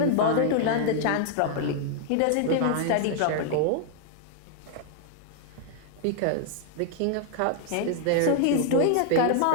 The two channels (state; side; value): different; both; correlation -0.01